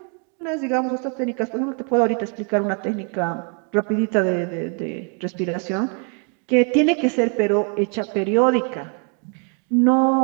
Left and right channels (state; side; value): quieter; left; 39.7 dB